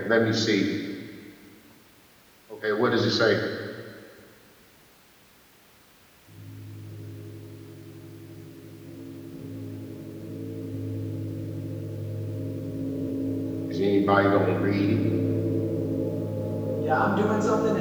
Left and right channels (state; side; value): identical; both; correlation 1.00